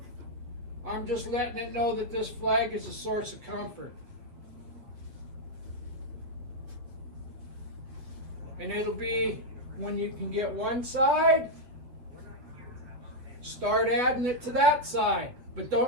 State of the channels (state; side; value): late; left; 8.3 ms